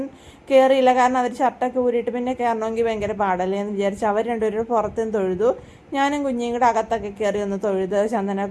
കയറിയില്ല, കാരണം അവർ ഷർട്ടൊക്കെ ഊരിയിട്ട് പിന്നെ കയറണമെങ്കിൽ ഭയങ്കര പാടല്ലേ എന്ന് വിചാരിച്ച് അവർ 2 പേരും പുറത്തുനിന്ന് തൊഴുതു. ഞാനും കുഞ്ഞിയും കൂടെ അകത്തൊക്കെ കയറി ഒന്ന് തൊഴുത്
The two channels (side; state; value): both; identical; correlation 1.00